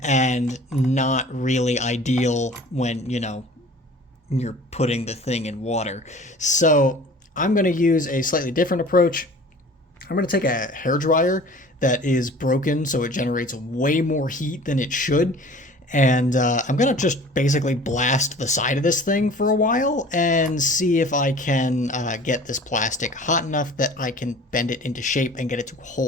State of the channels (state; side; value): normal; both; correlation 0.45